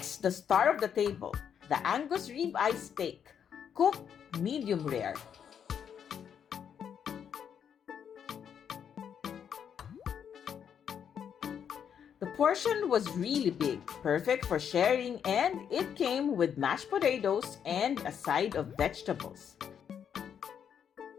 the star of the table, the Angus rib eye steak, cooked medium rare. The portion was really big, perfect for sharing, and it came with mashed potatoes and a side of vegetables.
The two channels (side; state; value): right; quieter; 8.1 dB